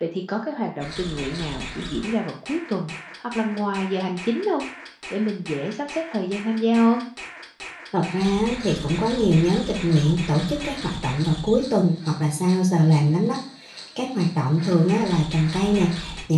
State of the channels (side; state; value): both; identical; correlation 1.00